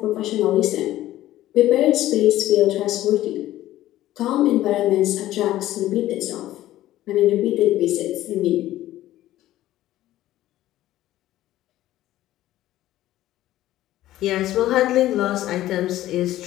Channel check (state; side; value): quieter; right; 14.5 dB